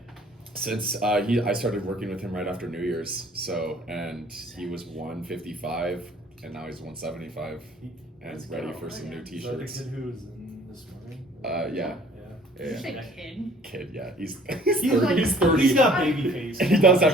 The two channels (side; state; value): both; normal; correlation 0.54